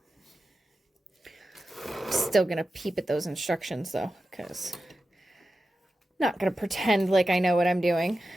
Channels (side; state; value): both; normal; correlation 0.92